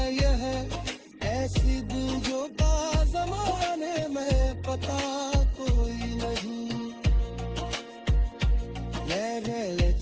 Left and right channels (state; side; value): identical; both; correlation 1.00